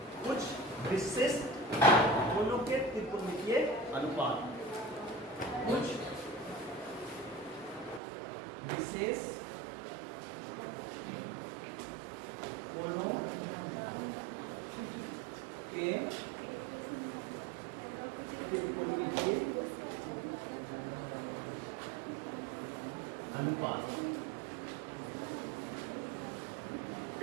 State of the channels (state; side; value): drops out; left; at 8.0 s